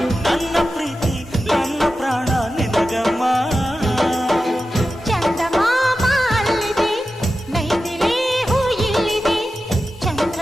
ನನ್ನ ಪ್ರೀತಿ ನನ್ನ ಪ್ರಾಣ ನಿನಗಮ್ಮ. ಚಂದಮಾಮ ಅಲ್ಲಿದೆ, ನೈದಿಲೆ ಹೂ ಇಲ್ಲಿದೆ,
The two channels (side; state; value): both; normal; correlation 0.92